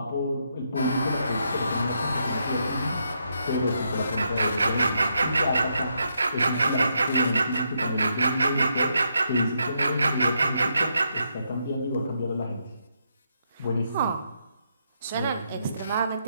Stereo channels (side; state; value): both; inverted; correlation -0.78